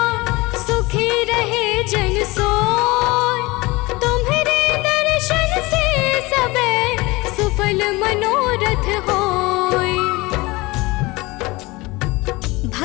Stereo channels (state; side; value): quieter; right; 22.6 dB